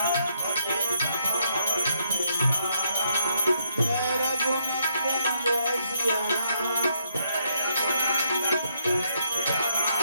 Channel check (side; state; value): both; inverted; correlation -0.72